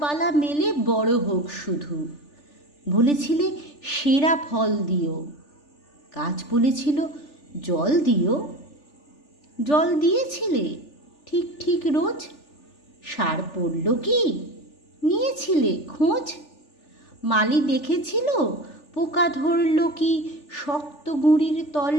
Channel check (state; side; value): late; right; 3.4 ms